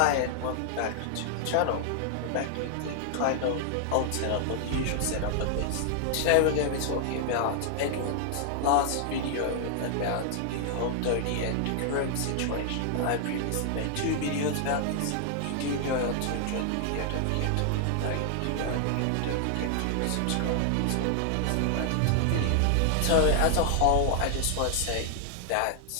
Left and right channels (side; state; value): both; different; correlation 0.00